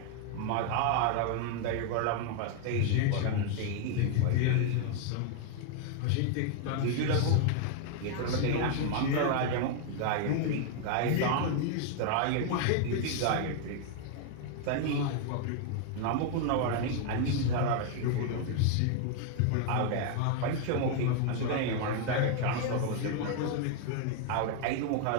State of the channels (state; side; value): different; both; correlation 0.00